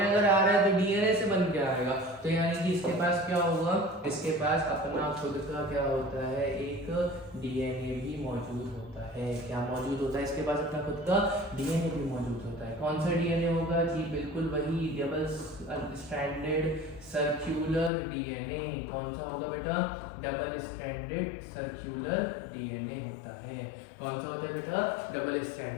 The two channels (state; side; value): drops out; right; at 17.9 s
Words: अगर आ रहा है तो डीएनए से बन के आएगा, तो यानी कि इसके पास क्या होगा, इसके पास अपना खुद का क्या होता है, एक डीएनए भी मौजूद होता है। क्या मौजूद होता है इसके पास, अपना खुद का डीएनए भी मौजूद होता है। कौन सा डीएनए होगा जी, बिल्कुल वही डबल स्ट्रैंडेड सर्कुलर डीएनए। कौन सा होगा बेटा, डबल स्ट्रैंडेड सर्कुलर डीएनए होता है। कौन सा होता है बेटा, डबल